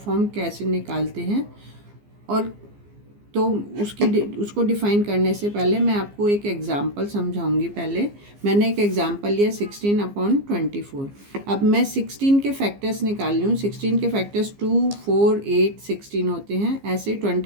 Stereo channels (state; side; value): late; left; 15 ms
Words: कैसे निकालते हैं। और तो उसको डिफ़ाइन करने से पहले मैं आपको एक एग्ज़ाम्पल समझाऊंगी। पहले मैंने एक एग्ज़ाम्पल लिया 16/24। अब मैं 16 के फैक्टर्स निकाल रही हूँ। 16 के फैक्टर्स 2, 4, 8, 16 होते हैं। ऐसे